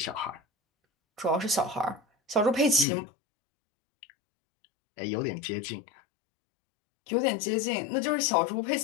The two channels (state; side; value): drops out; right; at 2.9 s